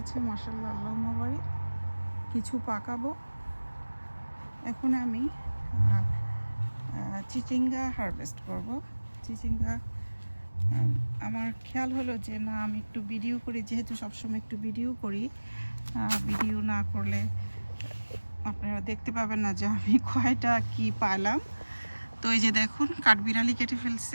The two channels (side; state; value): both; inverted; correlation -1.00